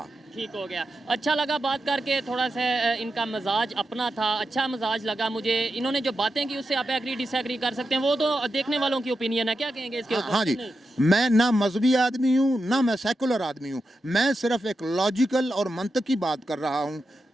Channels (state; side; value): normal; both; correlation 0.88